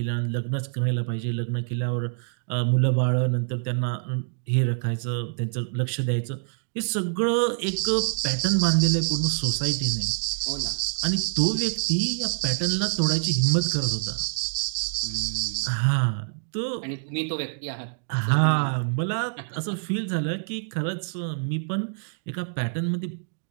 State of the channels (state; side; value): silent; left; digital silence